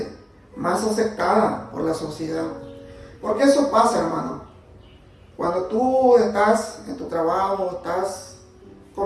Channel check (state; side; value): identical; both; correlation 1.00